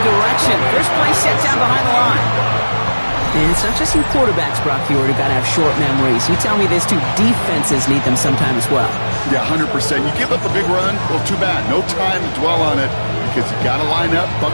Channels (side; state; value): both; inverted; correlation -1.00